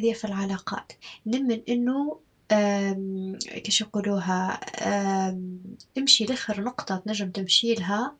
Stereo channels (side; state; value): both; identical; correlation 1.00